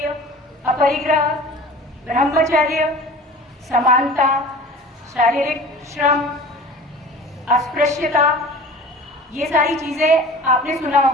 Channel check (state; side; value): normal; both; correlation 0.40